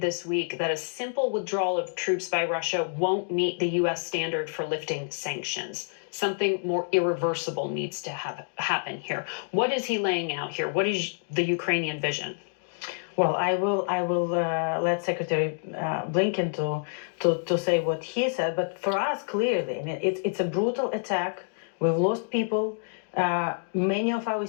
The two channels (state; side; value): silent; right; digital silence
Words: this week that a simple withdrawal of troops by Russia won't meet the U.S. standard for lifting sanctions. Something more irreversible needs to happen here. What is he laying out here? What is the Ukrainian vision? Well, I will let Secretary Blinken to say what he said. But for us, clearly, I mean, it's a brutal attack. We've lost people. Many of our